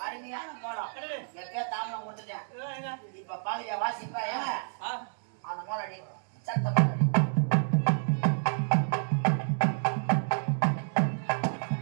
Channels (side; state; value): left; silent; digital silence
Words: அருமையான மோளம். எப்ப தாமலம் கொடுத்துட்டேன். இப்ப பாக்குறியா வாசிப்பா? அந்த மோளடி சத்தம்